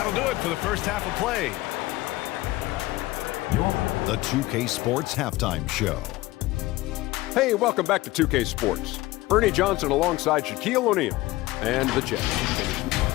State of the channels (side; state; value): right; quieter; 18.6 dB